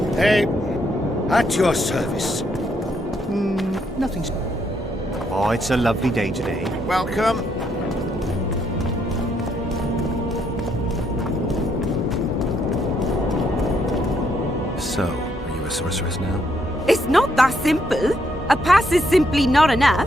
Hey, at your service. Nothing's... Oh, it's a lovely day today. Welcome. So, are you a sorceress now? It's not that simple. A pass is simply not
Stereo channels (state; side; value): normal; both; correlation 0.74